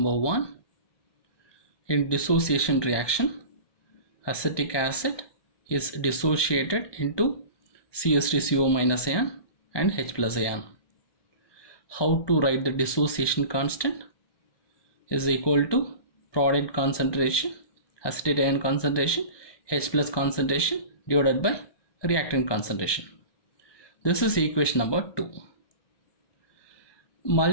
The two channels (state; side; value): late; right; 1.2 ms